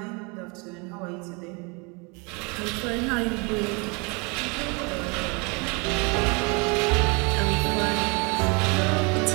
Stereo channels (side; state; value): left; quieter; 30.5 dB